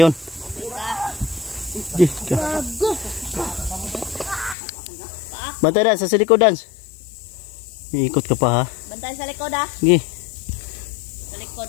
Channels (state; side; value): drops out; right; at 4.5 s